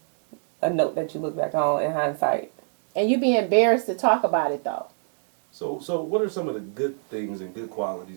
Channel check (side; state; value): left; silent; digital silence